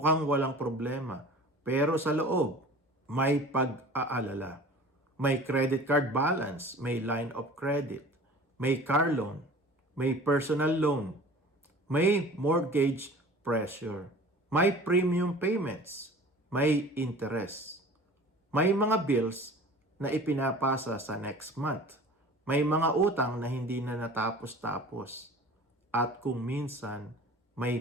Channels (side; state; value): both; normal; correlation 0.42